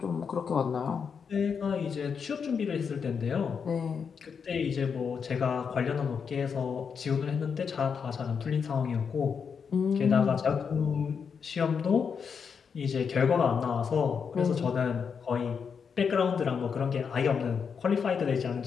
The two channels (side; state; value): right; quieter; 6.3 dB